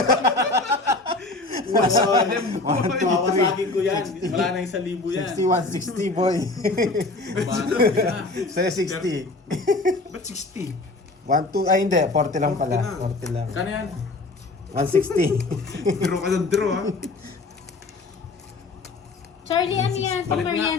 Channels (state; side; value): quieter; right; 3.2 dB